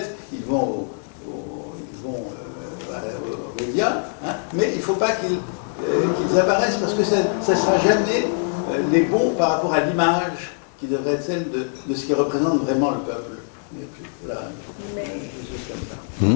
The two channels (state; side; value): silent; right; 63 dB below the other